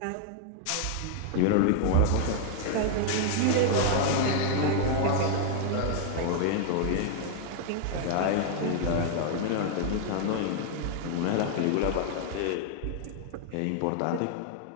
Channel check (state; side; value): different; both; correlation 0.00